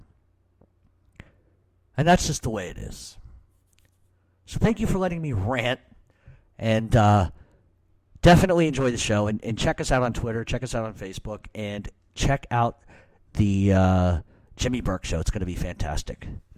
And that's just the way it is. So thank you for letting me rant. And definitely enjoy the show. And check us out on Twitter. Check us out on Facebook. And check out the Jimmy Burke Show. It's going to be fantastic.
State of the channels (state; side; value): identical; both; correlation 1.00